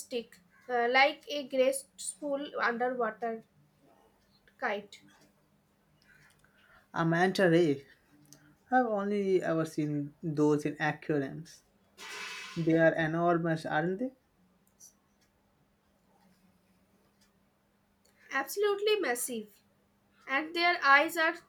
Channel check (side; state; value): both; identical; correlation 1.00